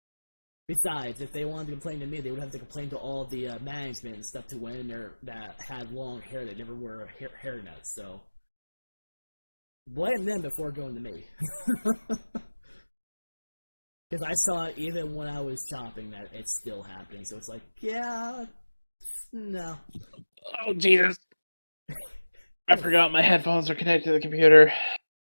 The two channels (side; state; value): both; inverted; correlation -1.00